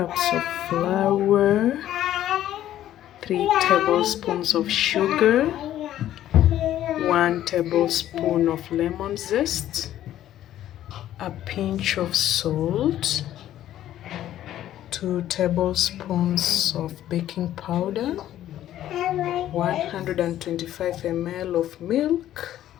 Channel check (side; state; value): right; quieter; 12.4 dB